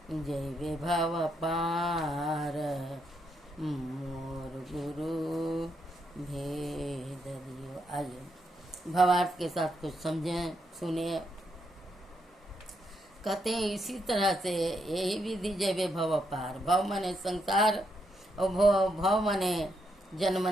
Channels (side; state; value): both; normal; correlation 0.78